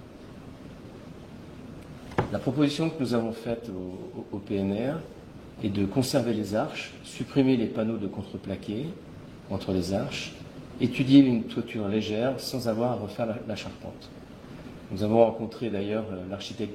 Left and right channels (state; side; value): identical; both; correlation 1.00